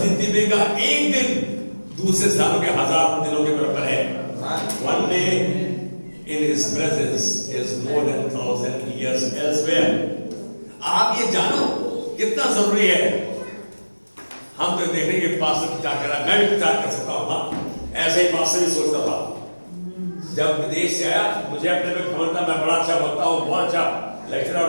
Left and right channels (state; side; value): inverted; both; correlation -1.00